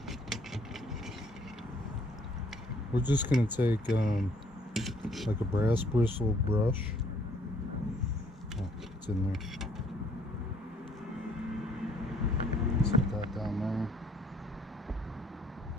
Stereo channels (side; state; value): both; normal; correlation 0.63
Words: we're just gonna take like a brass bristle brush. Oh, it's in there. Set that down there.